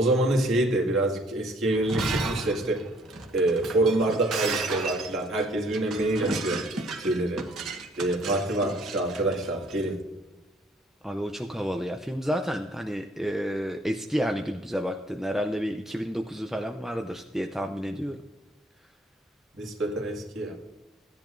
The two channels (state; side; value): normal; both; correlation 0.61